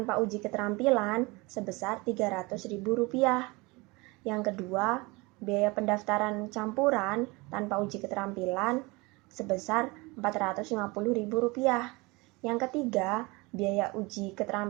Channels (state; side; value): quieter; left; 24.9 dB